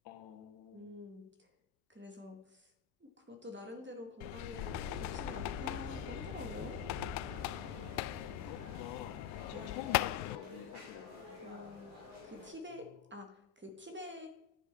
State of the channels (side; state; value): right; quieter; 8.9 dB